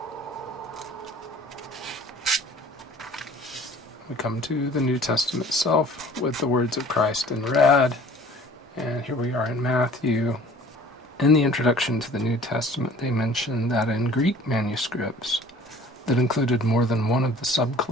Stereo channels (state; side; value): normal; both; correlation 0.49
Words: We come to the New Testament itself with the words of Christ in red, and here we are in Matthew. In the introduction to the New Testament, they mention that in Greek manuscripts, that included more than one of the